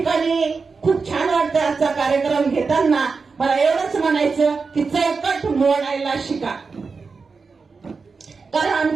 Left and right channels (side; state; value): left; quieter; 4.7 dB